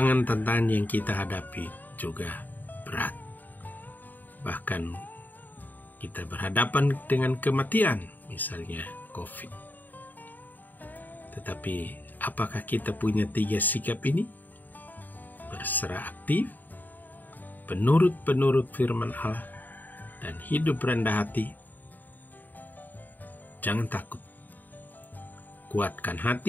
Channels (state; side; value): late; right; 0.087 ms